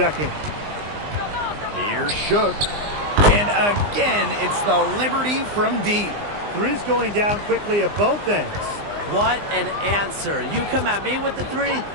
Here's Shook. And again, it's the Liberty from deep. 3's going down quickly at both ends. What an answer. You come at me with the 3,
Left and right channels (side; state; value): left; late; 20 ms